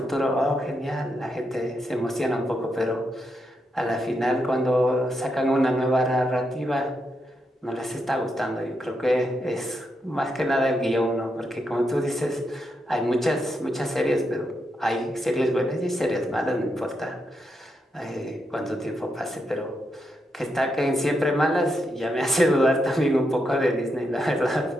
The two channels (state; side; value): normal; both; correlation 0.82